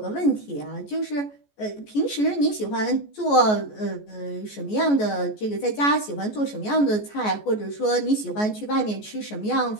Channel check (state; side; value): late; right; 14 ms